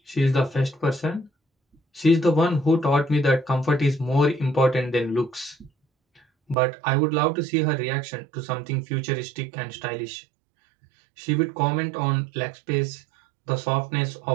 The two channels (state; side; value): drops out; left; at 6.6 s